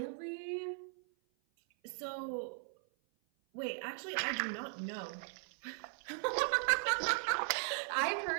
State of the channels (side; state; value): left; silent; 52 dB below the other